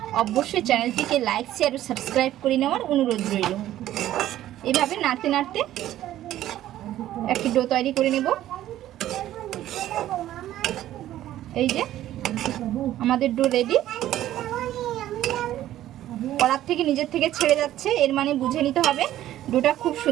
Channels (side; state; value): left; quieter; 13.3 dB